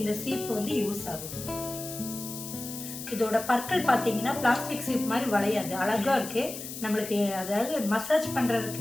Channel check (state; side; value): noise; left; hiss, 10 dB below the sound